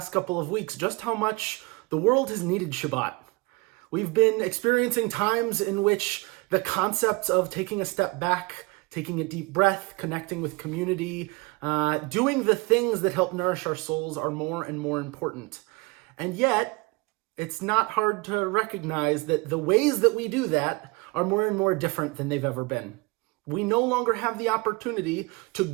couple of weeks just how much the world has needed Shabbat. We've been experiencing times in which the concepts of taking a step back, taking a deep breath, connecting with community, doing the things that help nourish our souls are more and more important. And yet, it's not hard to recognize that the ways that we do that are more and more different than they've ever been. We no longer have the opportunity to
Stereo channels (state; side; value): quieter; left; 25.4 dB